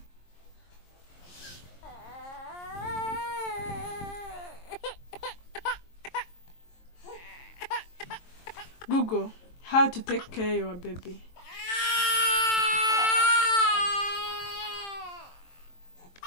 Google how to take care of your baby.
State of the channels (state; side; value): late; right; 23 ms